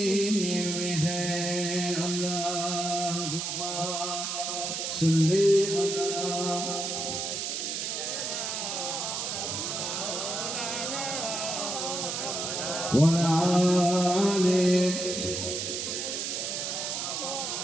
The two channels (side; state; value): right; noise; hiss, 3 dB below the sound